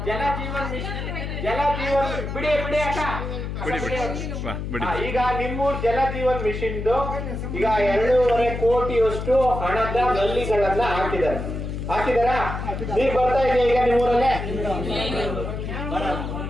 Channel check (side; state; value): left; noise; hum, 5 dB below the sound